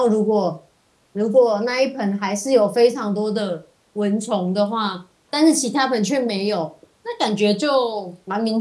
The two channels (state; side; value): identical; both; correlation 1.00